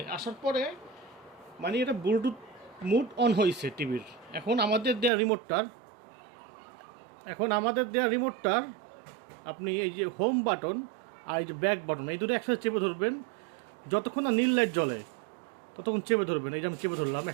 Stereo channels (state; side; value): drops out; left; at 5.1 s